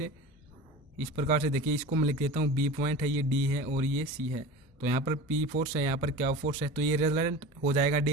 इस प्रकार से देखिए, इसको मैं लिख देता हूँ B पॉइंट है, ये D है और ये C है। तो यहाँ पर P फोर्स है, यहाँ पर Q फोर्स है, तो ये रिजल्ट हो जाएगा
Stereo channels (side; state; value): both; normal; correlation 0.33